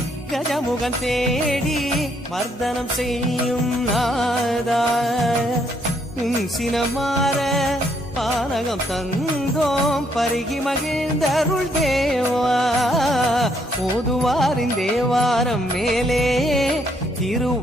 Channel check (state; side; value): normal; both; correlation 0.71